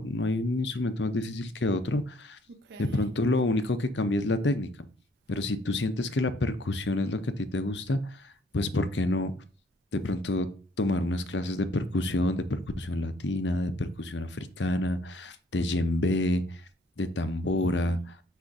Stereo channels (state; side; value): normal; both; correlation 0.63